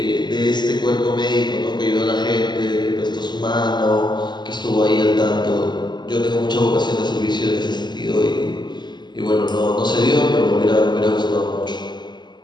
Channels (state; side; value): late; right; 0.21 ms